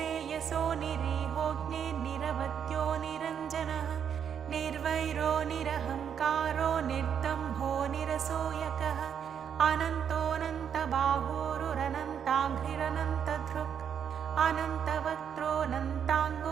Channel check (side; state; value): left; quieter; 8.1 dB